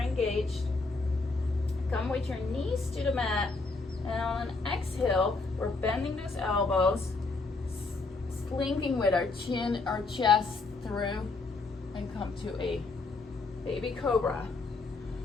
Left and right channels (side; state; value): right; quieter; 3.8 dB